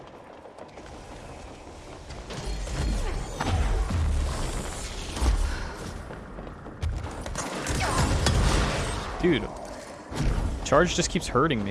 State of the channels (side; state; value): both; identical; correlation 1.00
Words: Dude, charge just keeps hurting